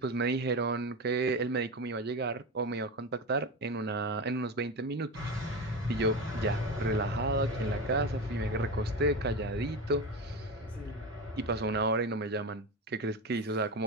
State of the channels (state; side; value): normal; both; correlation 0.21